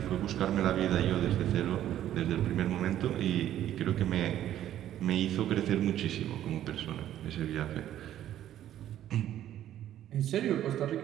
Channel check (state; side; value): quieter; left; 11.9 dB